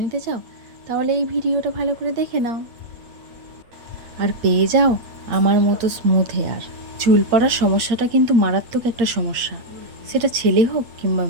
নিতে চাও, তাহলে এই ভিডিওটা ভালো করে দেখে নাও আর পেয়ে যাও আমার মতো স্মুথ হেয়ার। চুল পড়ার সমস্যাটা কিন্তু মারাত্মক একটা সমস্যা, সেটা ছেলে হোক কিংবা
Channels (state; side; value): late; left; 8.6 ms